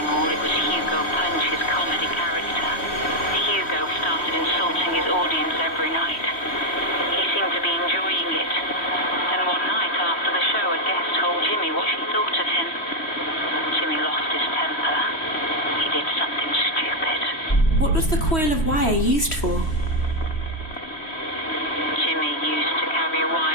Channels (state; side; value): late; right; 3.1 ms